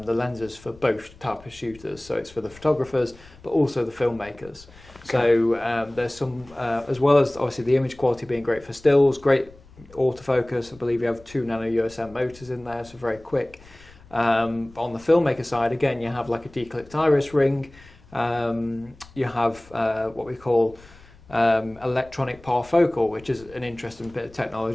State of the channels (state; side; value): noise; left; rumble, 23 dB below the sound